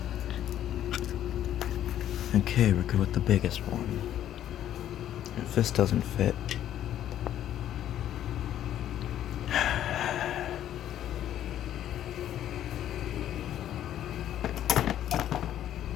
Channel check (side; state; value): right; quieter; 11.4 dB